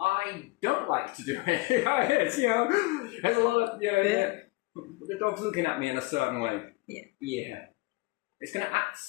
I don't like to do it. It's, you know, there's a lot of, you know, the dog's looking at me in a certain way. Yeah. It's going to act a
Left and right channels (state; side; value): quieter; right; 22.1 dB